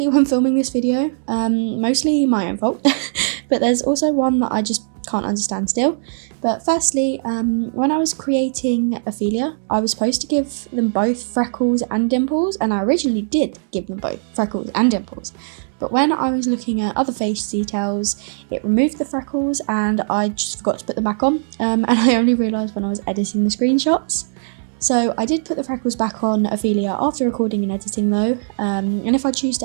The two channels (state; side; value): silent; left; 66 dB below the other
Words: when filming this video, mostly my own fault, but there's also one that I just can't understand still. But firstly, when I was creating Ophelia, I was supposed to give them both freckles and dimples, and I originally did give them both freckles and dimples. But when I was looking at other face details, it removed the freckles and I just forgot to put them back on, and I only realised when I was editing the screenshots. So I did put the freckles back on Ophelia after recording and editing though, and if I choose to